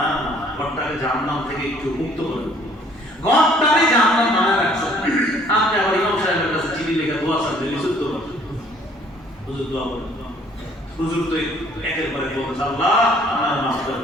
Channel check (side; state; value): both; normal; correlation 0.59